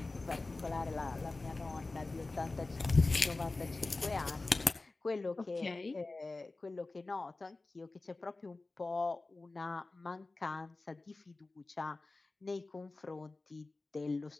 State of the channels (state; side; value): quieter; right; 3.3 dB